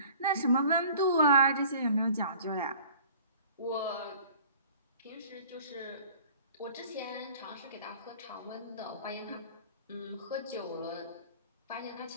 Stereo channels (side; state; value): both; inverted; correlation -0.49